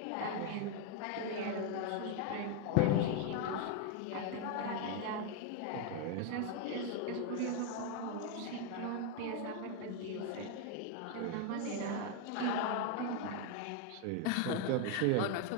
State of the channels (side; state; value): both; different; correlation 0.01